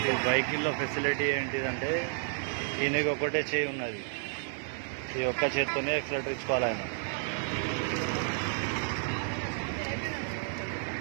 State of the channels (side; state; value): left; silent; 57 dB below the other